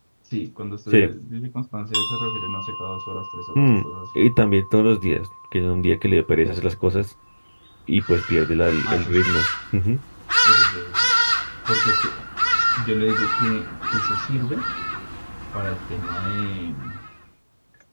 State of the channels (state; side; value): inverted; both; correlation -1.00